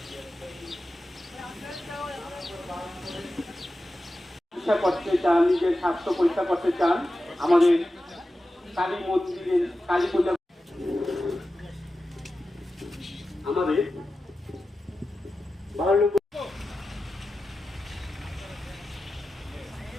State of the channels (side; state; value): both; normal; correlation 0.93